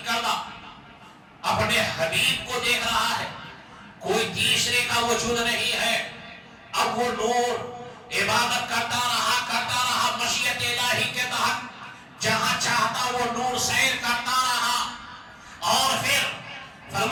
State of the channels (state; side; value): identical; both; correlation 1.00